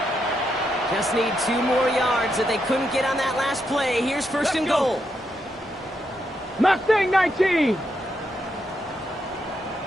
Just need 2 more yards that they couldn't get on that last play. Here's first and goal. Mustang 19.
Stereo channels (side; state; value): both; normal; correlation 0.81